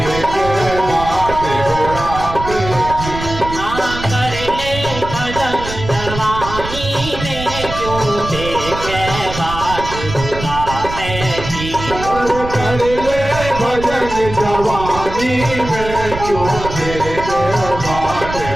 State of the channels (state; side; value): noise; right; rumble, 9 dB below the sound